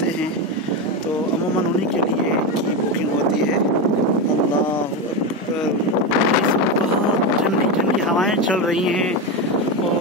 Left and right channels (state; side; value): normal; both; correlation 0.14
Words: हैं तो अमूमन उन्हीं के लिए की बुकिंग होती है। अल्लाह अकबर, बहुत ठंडी ठंडी हवाएं चल रही हैं